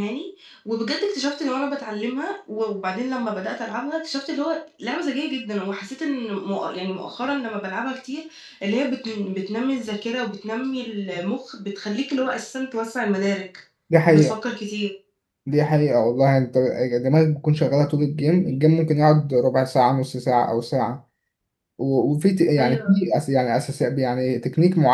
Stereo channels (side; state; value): both; identical; correlation 1.00